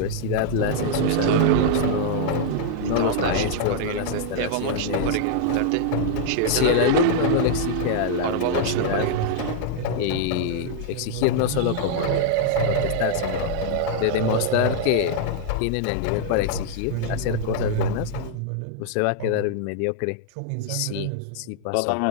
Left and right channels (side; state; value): both; different; correlation -0.01